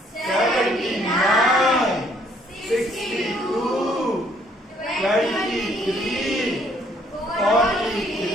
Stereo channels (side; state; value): both; normal; correlation 0.65